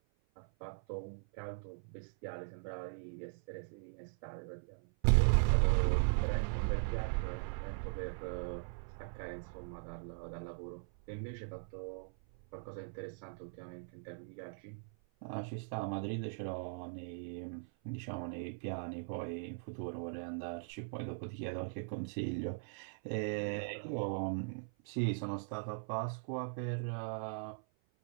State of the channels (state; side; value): silent; left; 51 dB below the other